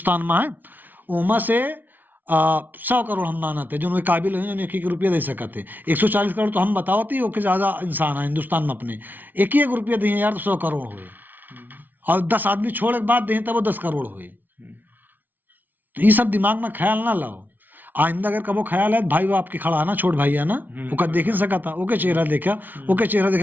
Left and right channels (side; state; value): left; late; 0.086 ms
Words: में है। उमा से 100 करोड़ हम मानते हैं जो उनके काबिल हैं, जो 1 रुपया दे सकते। 140 करोड़ तो हम बताओ थी, ओके ज्यादा इंसान है हिंदुस्तान में अपने, 1 रुपया दिए यार तो 100 करोड़ हुए, और 10 आदमी छोड़ के बाद दें तब वो 10 करोड़ हुए। तो ये सब दिमाग में ख्याल ना लाओ। आइंदा अगर कबो ख्याल है, भाई वो आपके खड़ा है ना, छोट भाई है ना, ओका देख ही सका था, ओके चेहरा देखा, ओके चेहरा